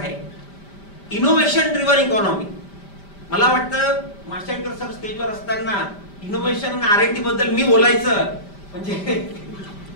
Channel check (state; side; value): late; right; 5.0 ms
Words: Innovation driven economy. मला वाटतं माशेलकर सर स्टेजवर असताना इनोव्हेशन आणि R&D बद्दल मी बोलायचं म्हणजे